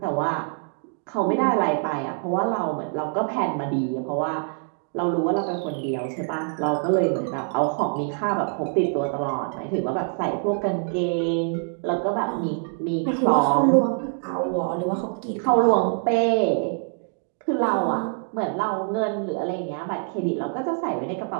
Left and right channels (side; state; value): left; silent; 57 dB below the other